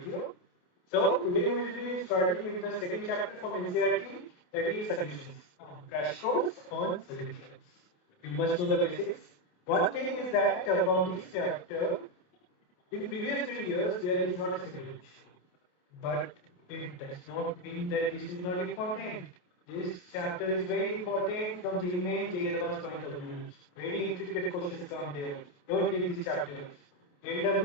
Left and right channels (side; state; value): right; late; 28 ms